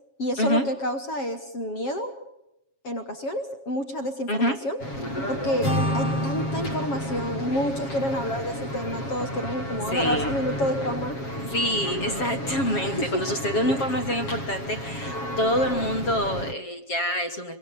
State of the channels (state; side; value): late; right; 7.3 ms